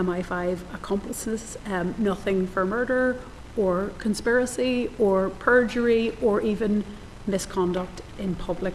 accomplices, nothing for murder or conspiracy or perjury or even misconduct in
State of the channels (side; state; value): both; identical; correlation 1.00